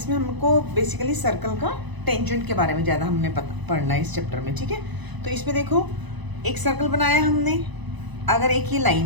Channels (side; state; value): left; late; 1.0 ms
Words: हमको बेसिकली सर्कल का टेंजेंट के बारे में ज़्यादा हमने पढ़ना है इस चैप्टर में। ठीक है, तो इसमें देखो एक सर्कल बनाया हमने, अगर एक ये